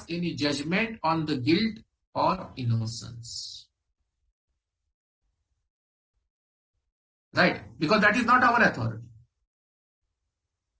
any judgment on the guilt or innocence. Right? Because that is not our authority.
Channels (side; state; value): both; identical; correlation 1.00